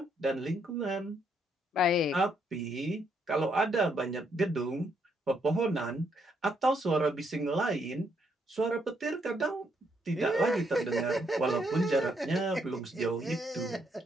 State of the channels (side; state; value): both; normal; correlation 0.74